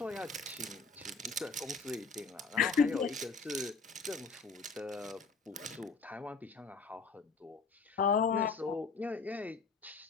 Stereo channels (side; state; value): right; quieter; 4.6 dB